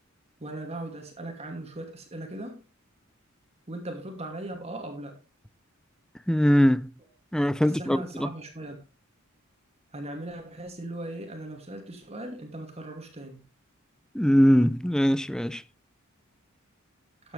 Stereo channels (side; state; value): both; normal; correlation 0.97